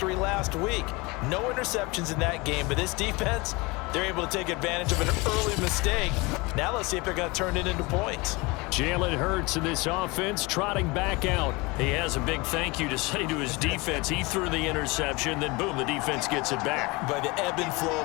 last week. No interceptions in that game, but this defense, they're able to take advantage of an early mistake. Now let's see if they're going to turn it into points. Jalen Hurts in this offense trotting back out. He has a big thank you to say to his defense. He threw the interception, then boom, the defense gets it back. But the ebb and flow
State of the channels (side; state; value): right; quieter; 25.0 dB